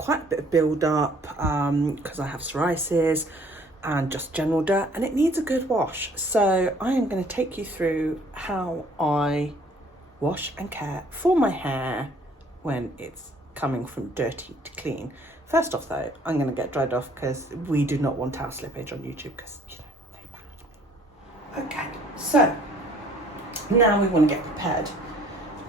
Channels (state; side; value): normal; both; correlation 0.58